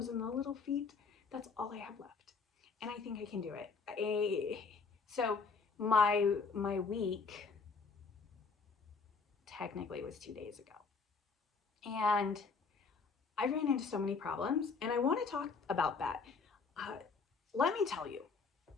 and the little feet, that's all I have left. And I think I can do it. So my week technically was 2 days ago. And I ran into so many problems, and I want to talk about that. Let me tell you,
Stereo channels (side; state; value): right; quieter; 4.8 dB